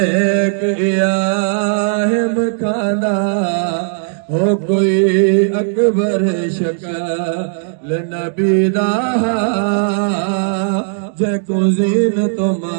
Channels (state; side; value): silent; left; digital silence